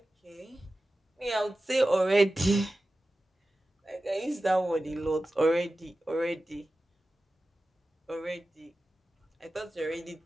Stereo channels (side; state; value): both; normal; correlation 0.94